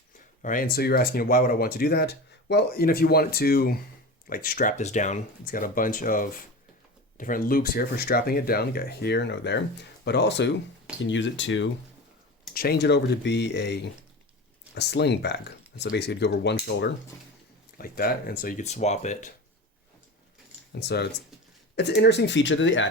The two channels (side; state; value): both; normal; correlation 0.30